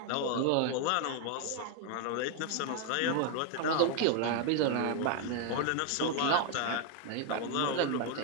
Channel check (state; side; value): different; both; correlation 0.00